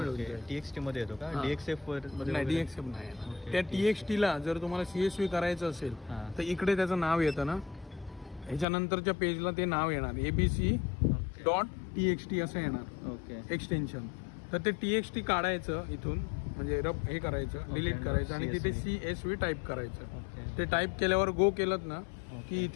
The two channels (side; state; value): right; drops out; at 8.7 s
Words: जाईल. TXT मध्ये येतो का? हां. DXF वर नाही, DXF नाही येणार. ओके. त्या TXTला जर तुम्हाला CSV करायचं असेल हां. तर इकडे त्याचं नाव येतं ना, ह्याच्यानंतरच्या पेजला ते नाव येणार ABC.txt असं येणार ओके. एक्सटेन्शन. तर ते TXT काढायचं इथून, म्हणजे हे करायचं, डिलीट करायचं आणि तिथे CSV टाईप करायचं. ओके. ते टाईप केल्यावर गो केलं ना की